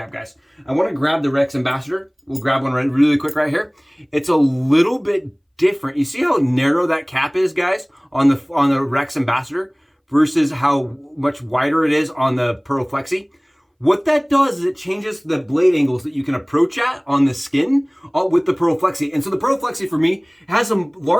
guys. I want to grab the Rex Ambassador. We'll grab one really quick right here. It's a little bit different. You see how narrow that cap is, guys, on the Rex Ambassador versus how much wider it is on the Pearl Flexi? What that does is it changes the blade angles that you can approach at on the skin with the Pearl Flexi. And so the Pearl Flexi for me has a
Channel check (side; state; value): both; identical; correlation 1.00